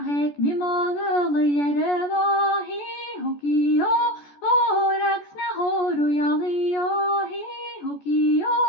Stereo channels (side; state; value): right; late; 14 ms